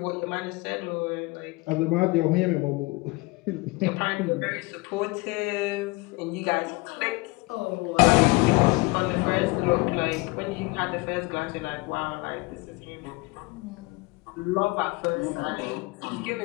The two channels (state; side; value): quieter; right; 24.9 dB